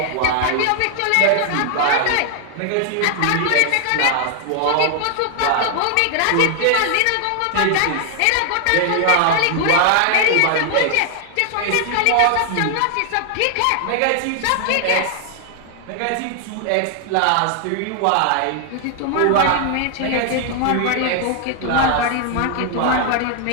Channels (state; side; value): different; both; correlation 0.00